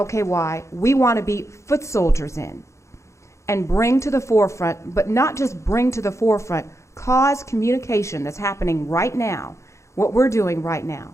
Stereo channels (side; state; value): right; late; 0.14 ms